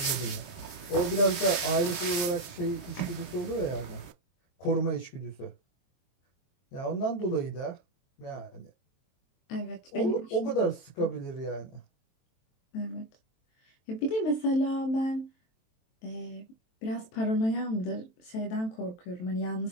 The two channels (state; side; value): late; right; 23 ms